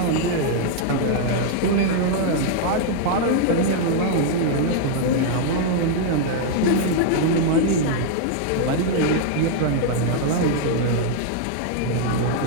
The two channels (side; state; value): both; different; correlation -0.01